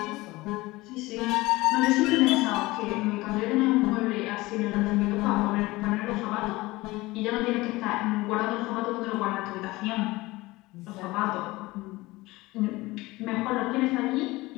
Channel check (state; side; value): quieter; right; 20.4 dB